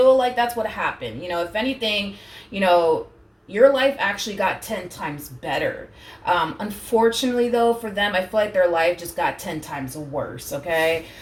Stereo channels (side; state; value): both; identical; correlation 1.00